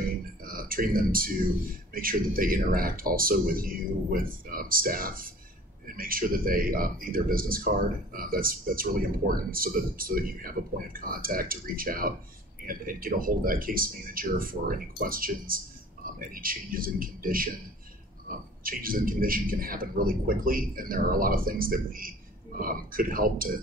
them to make sure that they interact also with you, with staff, and make sure that they need their business card. That's really important, so that you have a point of contact to reach out and get a hold of that case manager for any questions, any changes in condition. Changes in condition can happen really quickly, and there are a lot of things that we could help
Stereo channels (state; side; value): normal; both; correlation 0.47